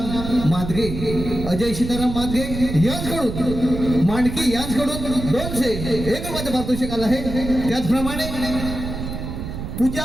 मादगे, अजय सीताराम मादगे यांच्याकडून मांडकी यांच्याकडून 201 रुपयाचं पारितोषिक आलं आहे. त्याचप्रमाणे पूजा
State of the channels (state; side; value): noise; right; rumble, 6 dB below the sound